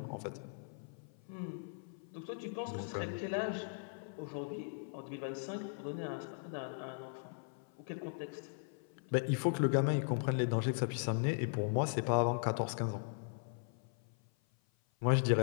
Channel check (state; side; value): silent; right; 52 dB below the other